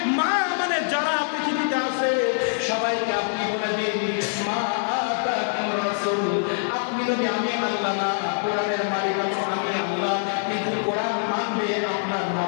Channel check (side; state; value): right; silent; digital silence